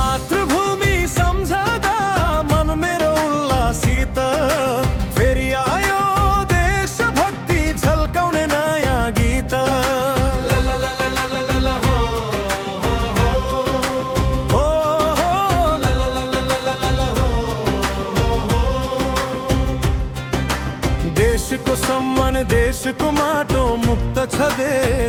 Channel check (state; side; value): identical; both; correlation 1.00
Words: सम्झदा मन मेरो उल्लासित फेरि आयो देशभक्ति झल्काउने नयाँ गीत ला ला ला ला ला ला ला हो हो हो ला ला ला ला ला ला ला हो देशको सम्मान देशको माटो मुक्त छ